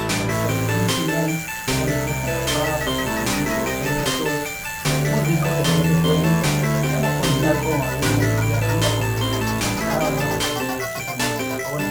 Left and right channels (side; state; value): both; identical; correlation 1.00